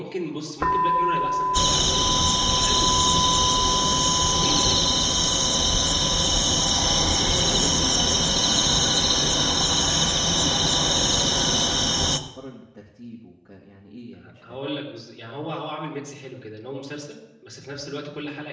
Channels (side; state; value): both; identical; correlation 1.00